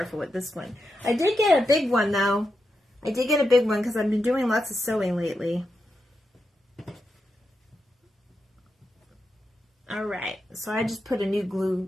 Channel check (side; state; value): both; normal; correlation 0.87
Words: with this one. I did get a big one though. I did get a big one because I've been doing lots of sewing lately. All right, so I just put a new glue.